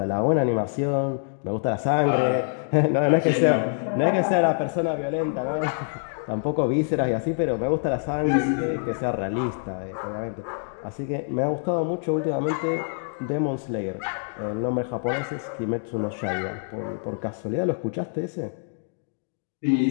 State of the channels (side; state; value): right; silent; digital silence